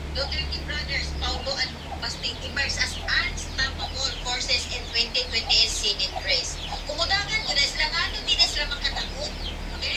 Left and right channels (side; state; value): both; identical; correlation 1.00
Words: Duterte brothers Paulo and Basting emerged as unstoppable forces in 2028 Senate race. Kumudagan ko na sila nga di na sila makataot.